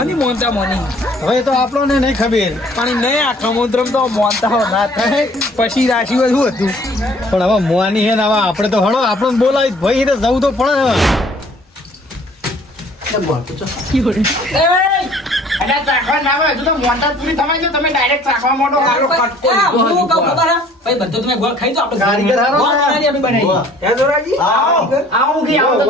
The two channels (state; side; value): normal; both; correlation 0.55